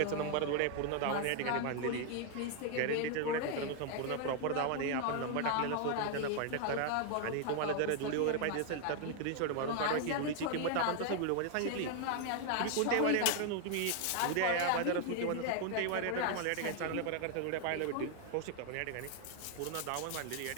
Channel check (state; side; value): different; both; correlation 0.00